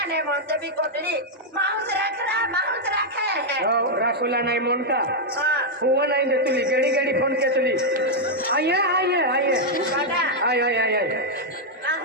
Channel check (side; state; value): both; normal; correlation -0.03